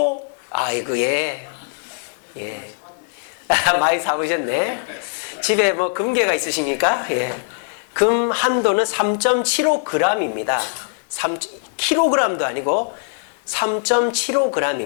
아이고, 예. 많이 사보셨네. 집에 뭐 금괴가 있으십니까? 예. 금 한 돈은 3.75g입니다. 3kg도 아니고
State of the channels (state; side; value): silent; right; digital silence